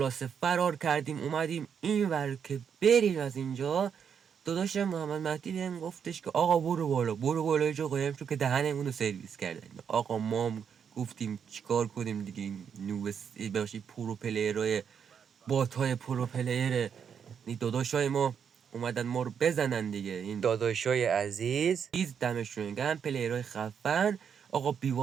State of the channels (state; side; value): quieter; left; 7.4 dB